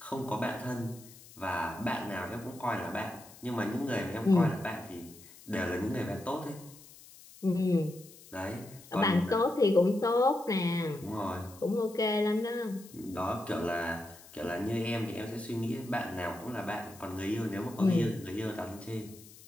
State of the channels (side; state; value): left; noise; hiss, 20 dB below the sound